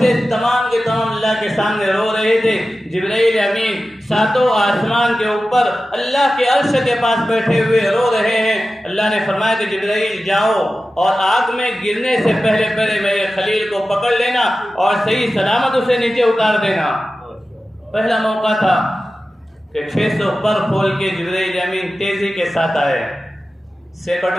تمام کے تمام اللہ کے سامنے رو رہے تھے۔ جبرائیل امین 7 آسمان کے اوپر اللہ کے عرش کے پاس بیٹھے ہوئے رو رہے ہیں۔ اللہ نے فرمایا کہ جبرائیل جاؤ اور آگ میں گرنے سے پہلے میرے خلیل کو پکڑ لینا اور صحیح سلامت اسے نیچے اتار دینا۔ پہلا موقع تھا کہ 600 پر کھول کے جبرائیل امین تیزی کے ساتھ آئے،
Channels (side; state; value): both; normal; correlation 0.94